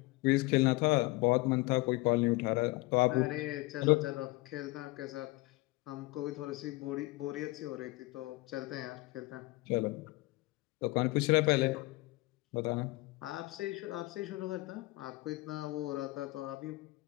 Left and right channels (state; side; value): quieter; right; 22.3 dB